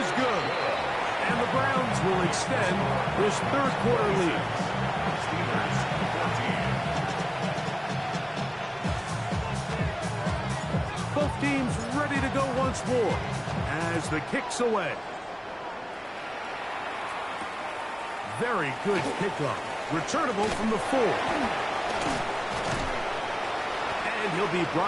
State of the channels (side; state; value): both; identical; correlation 1.00